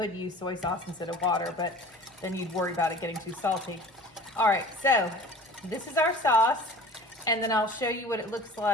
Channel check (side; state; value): both; normal; correlation 0.43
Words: use soy sauce instead of water, but then you'd worry about it getting too salty. All right, so this is our sauce, and then I'll show you what it looks